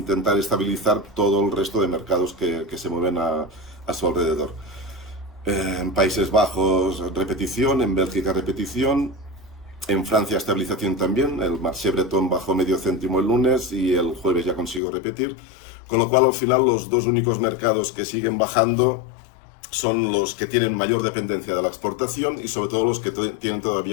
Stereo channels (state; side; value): drops out; right; at 14.8 s